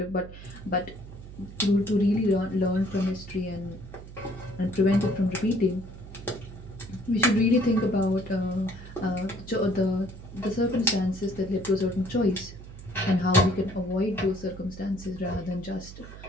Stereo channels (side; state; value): right; noise; hum, 14 dB below the sound